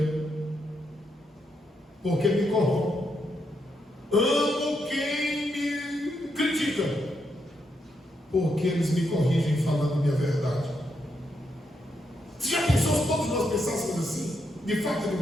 porque me corrompe. Amo quem me critica porque eles me corrigem falando a minha verdade. Você já pensou se todos nós pensássemos assim? De fato e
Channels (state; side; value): normal; both; correlation 0.80